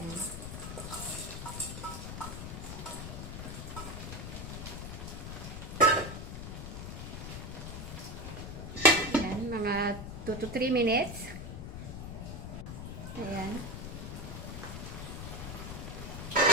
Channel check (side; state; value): left; noise; rumble, 7 dB below the sound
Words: Ayan, mga 2 to 3 minutes. Ayan.